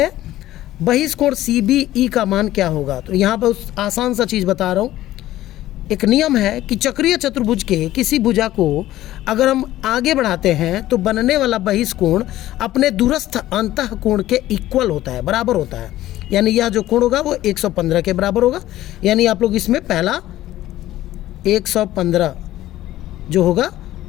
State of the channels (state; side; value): quieter; right; 14.7 dB